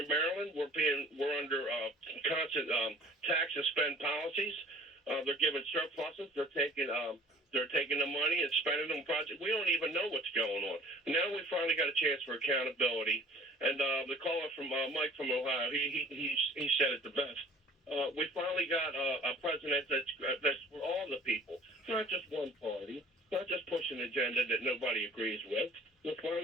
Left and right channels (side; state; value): both; normal; correlation 0.49